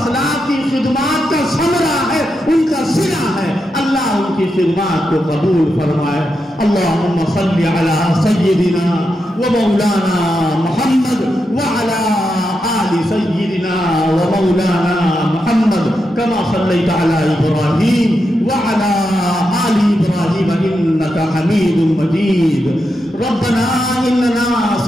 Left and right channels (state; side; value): normal; both; correlation 0.86